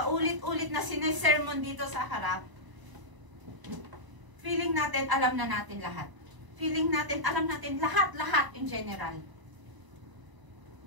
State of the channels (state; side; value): late; left; 1.0 ms